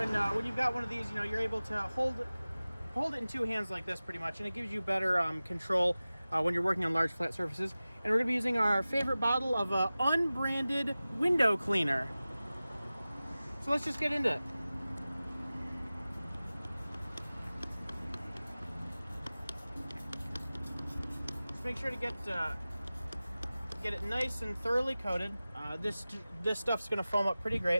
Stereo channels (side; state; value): both; inverted; correlation -0.97